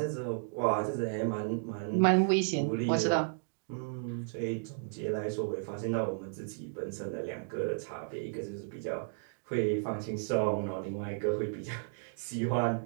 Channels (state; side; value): silent; left; digital silence